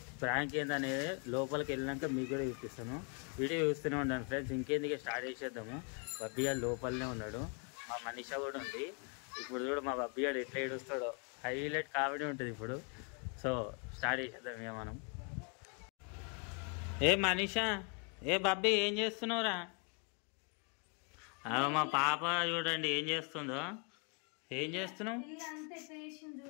ప్రాంక్ ఏందనేది లోపలికి వెళ్ళినాక మీకు కూడా చూపిస్తాను. వీడియో చూస్తూనే ఉండండి ఫ్రెండ్స్. ఇంకేందుకే స్టార్ట్ చేసేద్దాము. బబ్బీ గారు లోపలనే ఉన్నాడు, మా మనీషా కూడా ఉంది. ఇప్పుడు కూడా మా బబ్బీ గారు ఎట్లా ఏడుస్తాడో, హైలైట్ కామెడీ ఉంటుంది ఇప్పుడు. సో స్టార్ట్ చేసేద్దాం ఇక మనం. ఏ మనీషా, ఏ బబ్బీ ఏం చేస్తున్నావురా? మా పాప చూడండి ఏం చేస్తుందో. ఏం చేస్తున్నావు?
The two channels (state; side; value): quieter; right; 36.0 dB